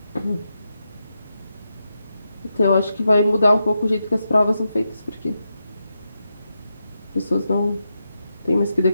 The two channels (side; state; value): both; inverted; correlation -0.86